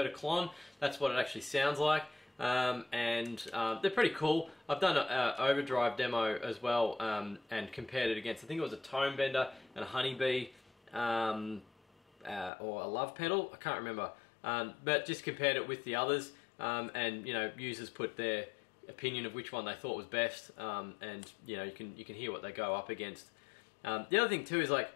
a Klon. That's what it actually sounds like. They're pretty cool. I've done an overdrive demo as well, and compared it against, I think it was a tone bender and a honeybee, or a love pedal, I can't remember, but just compared it with the others. and users put their opinion of which one they thought was best, and you can hear what they go up against. The other thing too is like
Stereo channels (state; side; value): drops out; right; at 12.5 s